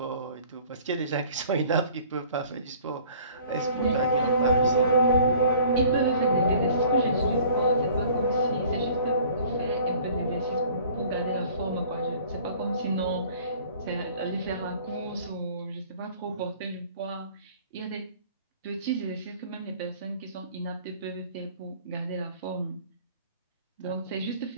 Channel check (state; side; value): inverted; both; correlation -0.50